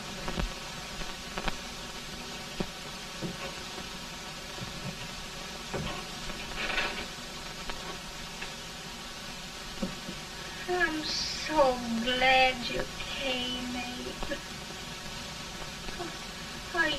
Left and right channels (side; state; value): both; identical; correlation 1.00